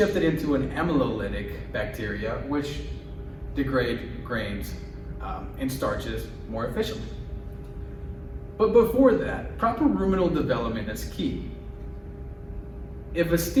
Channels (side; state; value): both; identical; correlation 1.00